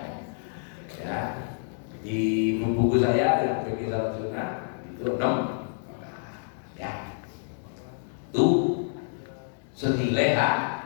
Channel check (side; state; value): right; silent; digital silence